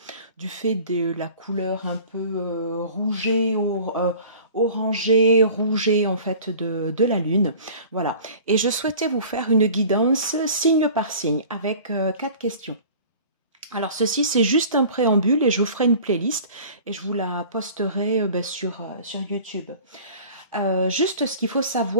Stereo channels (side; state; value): both; inverted; correlation -0.44